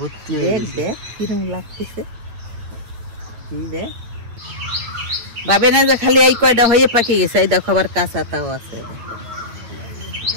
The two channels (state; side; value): late; left; 8.9 ms